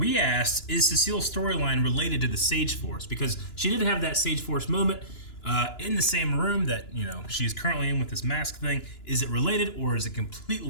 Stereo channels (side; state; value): right; late; 2.9 ms